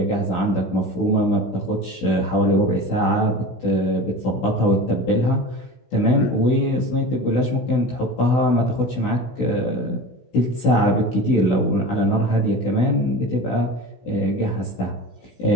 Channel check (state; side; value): late; right; 16 ms